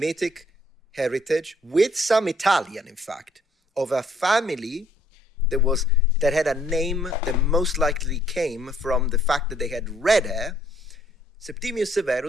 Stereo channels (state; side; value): normal; both; correlation 0.64